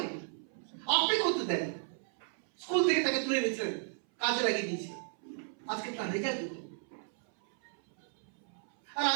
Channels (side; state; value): left; silent; 55 dB below the other